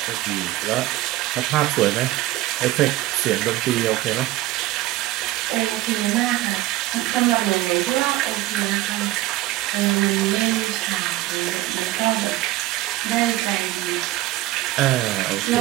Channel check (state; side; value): quieter; left; 16.7 dB